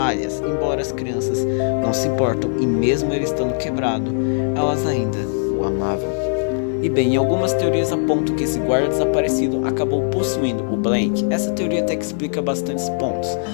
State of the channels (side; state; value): right; silent; 60 dB below the other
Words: embora as crianças não se importam, e mesmo ele estando quebrado, elas ainda o amavam. Em algumas teorias apontam que esse guarda desaparecido acabou possuindo o Blank. Essa teoria até que explica bastantes pontos,